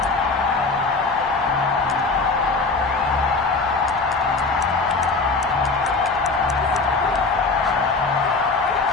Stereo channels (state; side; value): quieter; right; 3.9 dB